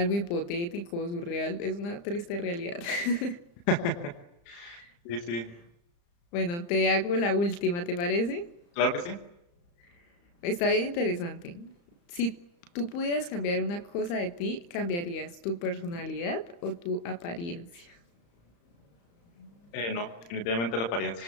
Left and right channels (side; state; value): right; late; 35 ms